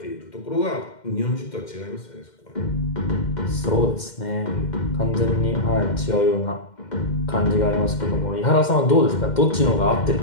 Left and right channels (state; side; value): late; right; 2.1 ms